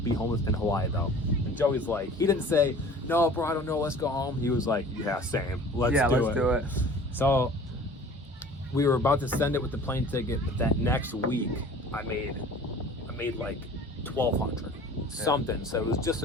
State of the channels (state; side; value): normal; both; correlation 0.45